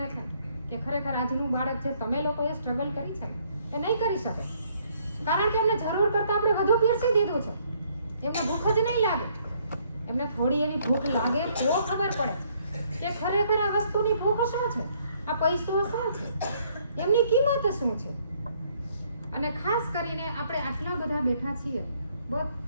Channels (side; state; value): both; inverted; correlation -0.66